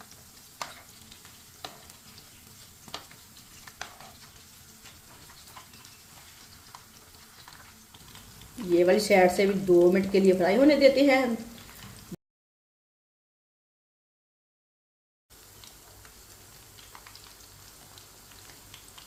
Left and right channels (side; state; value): both; identical; correlation 1.00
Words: ये वाली साइड से भी 2 मिनट के लिए फ्राई होने देते हैं।